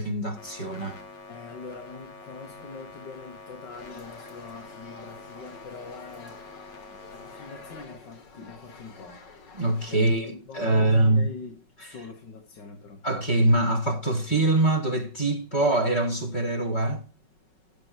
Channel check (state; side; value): late; right; 5.4 ms